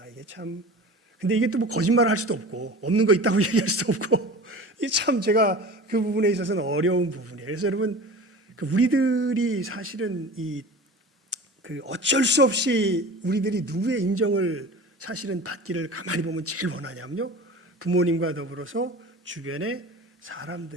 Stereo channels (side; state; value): both; normal; correlation 0.36